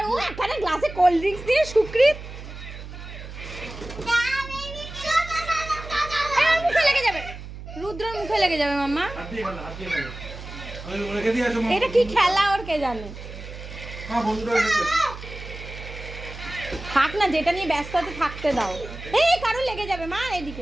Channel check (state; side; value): noise; right; hum, 12 dB below the sound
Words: ও একটা গ্লাসে কোল্ড ড্রিঙ্কস দিয়ে সুক্রিত। মুখে লেগে যাবে, রুদ্রর মুখে লেগে যাবে মাম্মা। হাত দিয়ে খেলো, হাত দিয়ে খেলো। আমি রেখে দিয়ে আসো। এটা কি খেলা ওর কে জানে। হ্যাঁ বন্ধুরা এসেছে। থাক না, যেটা নিয়ে ব্যস্ত আছে থাকতে দাও। এই কারো লেগে যাবে মা,